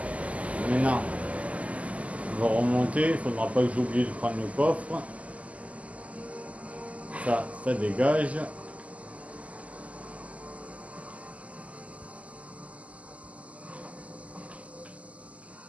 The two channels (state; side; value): late; left; 0.069 ms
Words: Maintenant, on va remonter. Il ne faudra pas que j'oublie de prendre le coffre. Ça dégage.